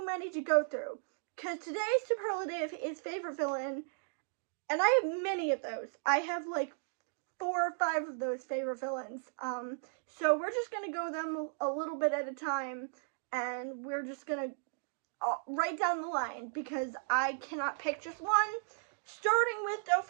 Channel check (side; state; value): left; silent; digital silence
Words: many to go through. Because today's superlative is favorite villain, and I have many of those. I have like 4 or 5 of those favorite villains. So we're just gonna go them a little bit at a time, and we're just gonna write down the line because I cannot pick just one. Starting with